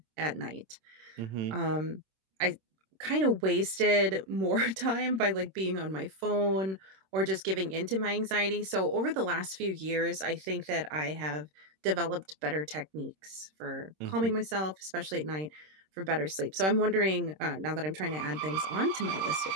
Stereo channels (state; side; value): late; left; 26 ms